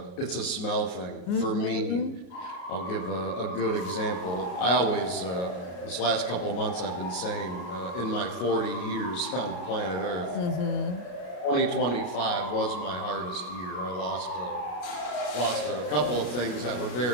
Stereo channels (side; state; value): right; late; 33 ms